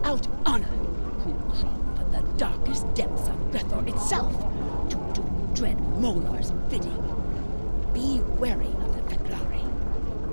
honor who crawl from the darkest depths of Grethor itself to do dread Molar's bidding. Be wary of the Feklari.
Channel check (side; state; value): both; inverted; correlation -1.00